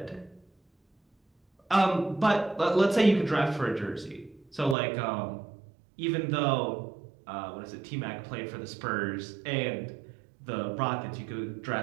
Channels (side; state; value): left; drops out; at 4.8 s